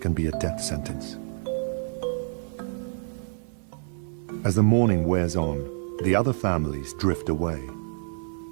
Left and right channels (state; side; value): silent; left; 60 dB below the other